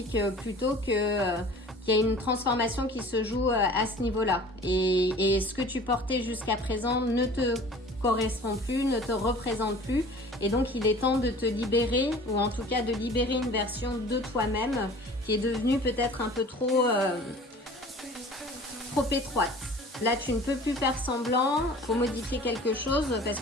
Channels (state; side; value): normal; both; correlation 0.45